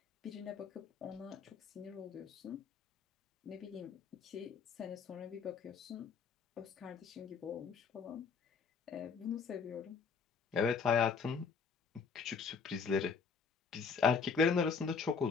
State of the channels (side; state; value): right; quieter; 5.5 dB